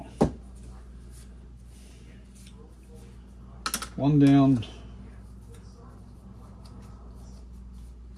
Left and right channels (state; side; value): identical; both; correlation 1.00